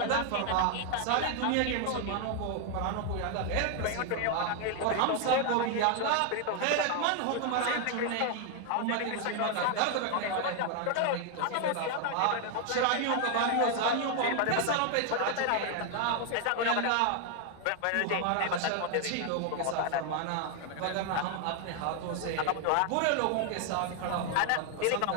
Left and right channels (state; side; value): different; both; correlation 0.00